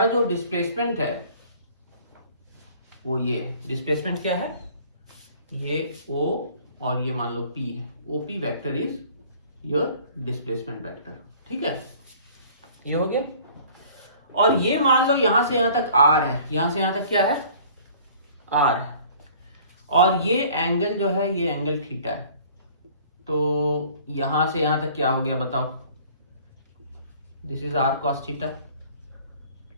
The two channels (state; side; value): inverted; both; correlation -0.51